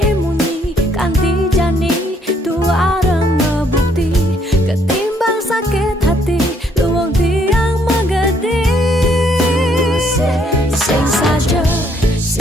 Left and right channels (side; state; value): both; normal; correlation 0.68